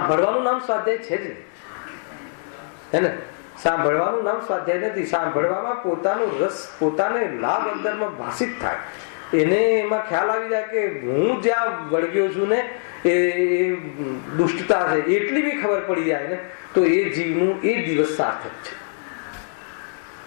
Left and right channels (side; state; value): right; silent; digital silence